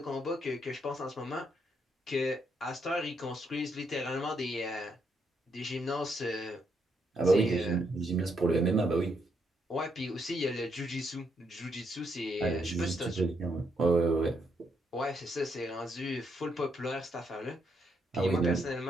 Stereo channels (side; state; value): both; normal; correlation 0.77